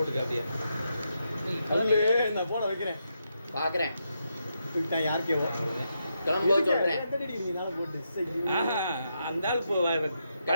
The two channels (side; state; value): both; inverted; correlation -0.83